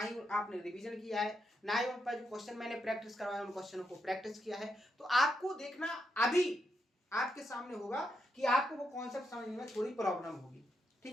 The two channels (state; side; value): normal; both; correlation 0.82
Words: आपने रिवीजन किया है, ना ही उन पर जो क्वेश्चन मैंने प्रैक्टिस करवाया उन क्वेश्चनों को प्रैक्टिस किया है, तो आपको देखना अभी आपके सामने होगा कि आपको वो कॉन्सेप्ट समझने में थोड़ी प्रॉब्लम होगी।